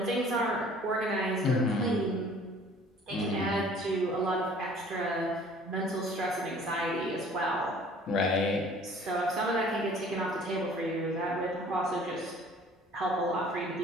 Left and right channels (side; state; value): both; normal; correlation 0.52